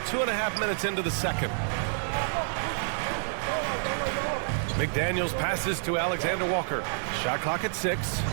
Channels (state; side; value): silent; left; digital silence